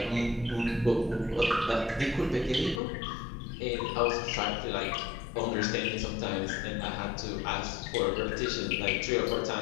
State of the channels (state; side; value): drops out; right; at 2.8 s